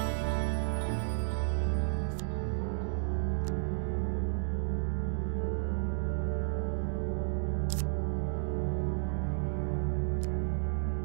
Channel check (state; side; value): silent; left; digital silence